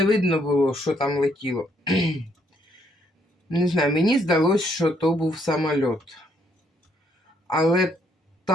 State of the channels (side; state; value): both; normal; correlation 0.70